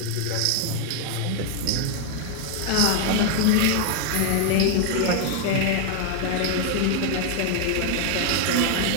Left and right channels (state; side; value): different; both; correlation 0.00